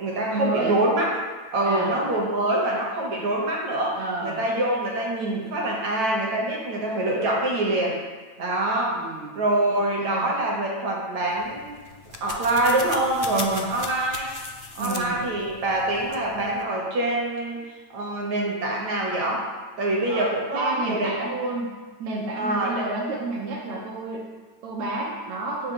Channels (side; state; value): left; late; 9.0 ms